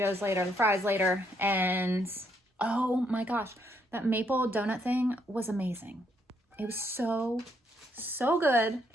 later, the fries later, and oh my gosh, that maple donut thing was amazing. It was so good.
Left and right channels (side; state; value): both; normal; correlation 0.73